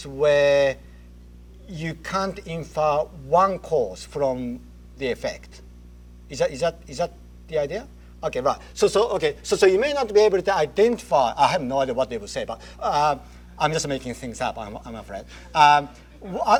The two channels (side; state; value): both; identical; correlation 1.00